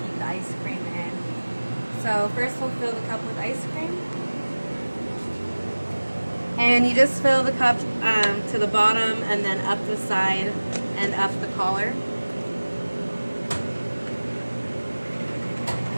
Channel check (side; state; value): both; inverted; correlation -1.00